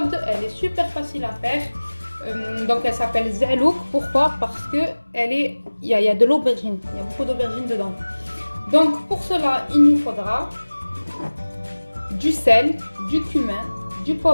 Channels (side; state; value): both; inverted; correlation -1.00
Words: Elle est super facile à faire. Donc elle s'appelle Zelouk. Pourquoi? Parce que il y a de l'aubergine, il y a beaucoup d'aubergine dedans. Donc pour cela il nous faudra du sel, du cumin, du